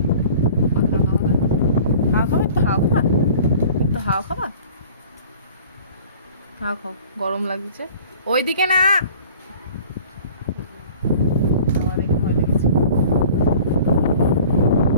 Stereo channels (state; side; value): inverted; both; correlation -0.46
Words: হাওয়া খাবে? তো হাওয়া খাবা, তো হাওয়া খাবা, হাওয়া খাও, গরম লাগছে। ওইদিকে না, আমার দেখে ভয় লেগেছে।